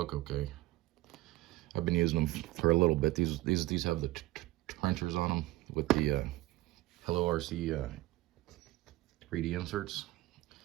okay. I've been using them for a little bit. These have the trenchers on them with the Hello RC 3D inserts.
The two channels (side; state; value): left; quieter; 18.3 dB